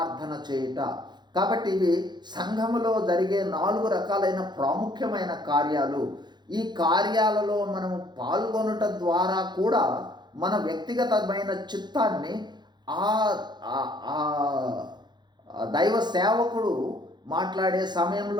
చేయుట. కాబట్టి ఇవి సంఘములో జరిగే 4 రకాలైన ప్రాముఖ్యమైన కార్యాలు. ఈ కార్యాలలో మనము పాల్గొనుట ద్వారా కూడా మన వ్యక్తిగతమైన చిత్తాన్ని దైవ సేవకుడు మాట్లాడే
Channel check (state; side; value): late; left; 0.21 ms